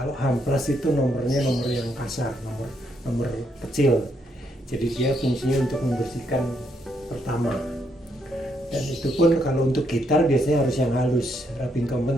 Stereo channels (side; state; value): both; normal; correlation 0.75